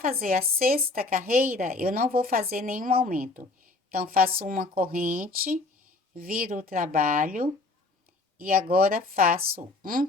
a sexta carreira, eu não vou fazer nenhum aumento. Então, faço uma corrente, viro o trabalho e agora faço um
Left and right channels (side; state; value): right; quieter; 3.4 dB